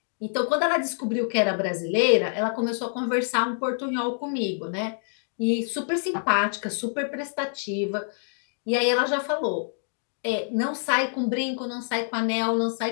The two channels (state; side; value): silent; right; digital silence